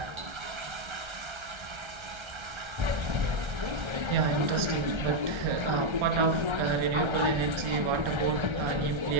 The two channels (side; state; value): left; late; 1.3 ms